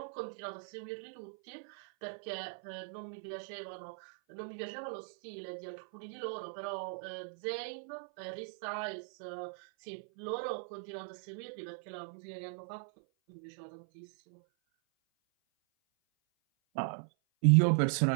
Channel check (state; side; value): silent; left; 52 dB below the other